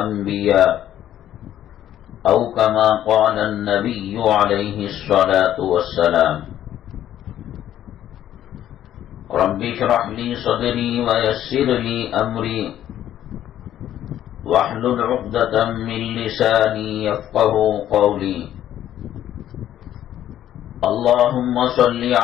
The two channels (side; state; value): right; quieter; 11.6 dB